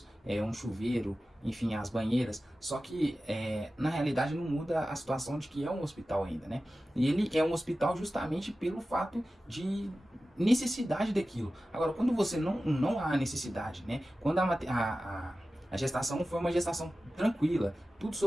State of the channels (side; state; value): both; normal; correlation 0.95